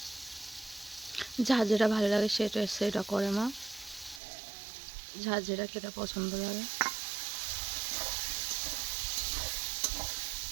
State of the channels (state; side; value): drops out; left; at 4.2 s